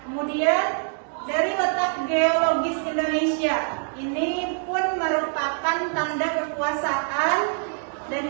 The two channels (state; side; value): silent; left; 56 dB below the other